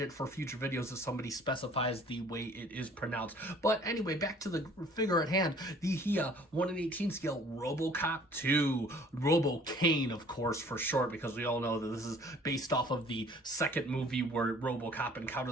for future videos if somebody specifies the way it is pronounced. But anyway, back to the figure at hand. The Hiya 1 in 18 scale Robocop 2. Robocain, of course, for short, because we all know that this is based off of the second movie where Robocop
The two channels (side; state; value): both; normal; correlation 0.54